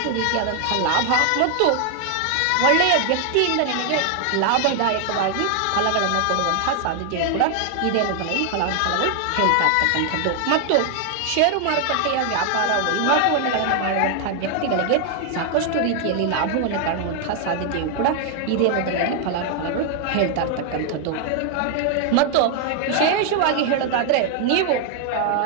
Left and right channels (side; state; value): both; different; correlation 0.00